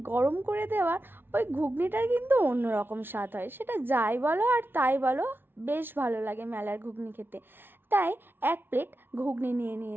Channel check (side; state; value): left; late; 0.10 ms